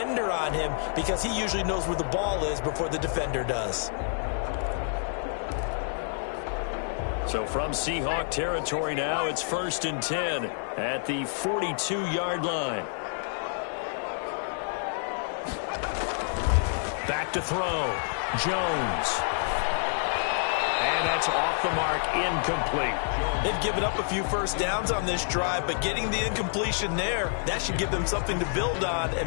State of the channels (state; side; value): silent; right; 59 dB below the other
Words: on him, because he usually knows where the ball is before the defender does. So from Seahawk territory now, it's 1st and 10 at the 42-yard line. Back to throw. Jones. And that's off the mark, incomplete. They've given up a few first downs on this drive, but getting the incompletion there, that should give them something to build on